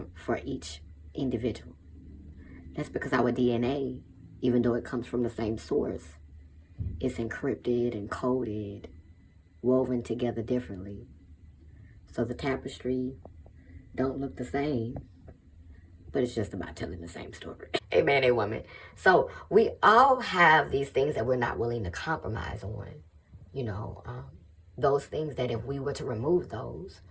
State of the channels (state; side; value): identical; both; correlation 1.00